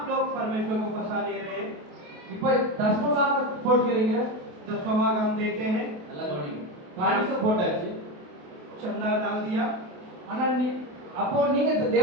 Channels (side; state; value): left; late; 28 ms